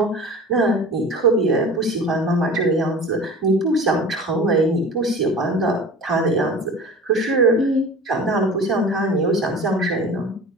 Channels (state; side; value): normal; both; correlation 0.38